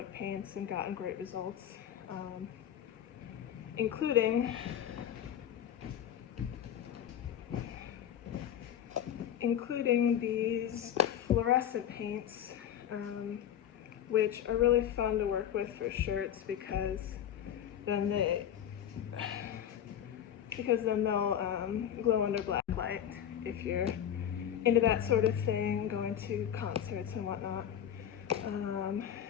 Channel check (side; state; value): right; quieter; 10.0 dB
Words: paints and gotten great results, including these fluorescent paints, which are really fun to work with for shirts because then they'll glow under black light if you're into that sort of thing, going to concerts and whatnot.